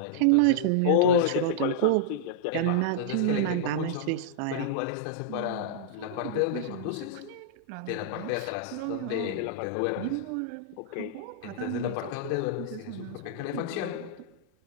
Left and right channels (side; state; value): both; different; correlation -0.02